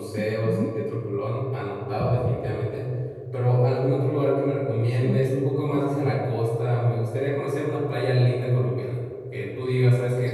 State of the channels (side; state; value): both; identical; correlation 1.00